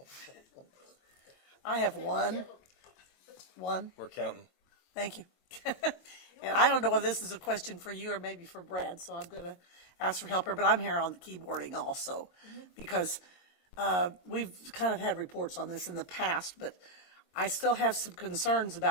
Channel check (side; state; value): right; late; 22 ms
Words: I have one. We're counting. Thank you. And I don't know whether this is a question for you or maybe for Brad, so I'm going to ask for help here, but I'm here on the keyboarding also, because we've kind of had reports on this in the past, but I still have some concerns